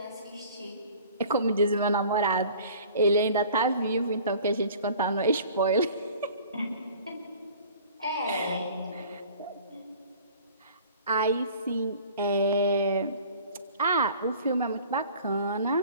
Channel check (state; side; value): inverted; both; correlation -0.47